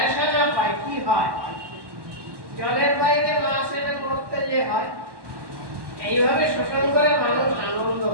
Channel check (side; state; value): left; late; 1.1 ms